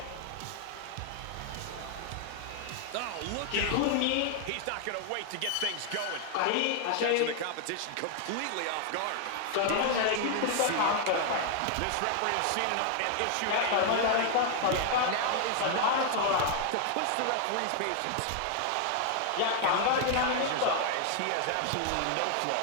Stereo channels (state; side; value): different; both; correlation 0.00